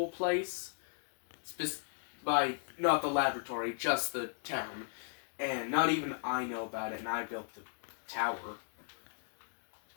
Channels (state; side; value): silent; right; digital silence